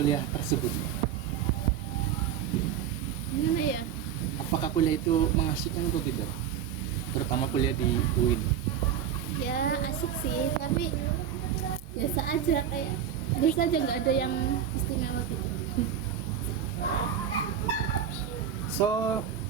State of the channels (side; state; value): left; quieter; 9.0 dB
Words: tersebut? Gimana ya? Apakah kuliah itu mengasihkan atau tidak? Terutama kuliah di UIN. Ya asik sih, tapi biasa aja, kayak biasa aja, nggak ada yang istimewa gitu. So,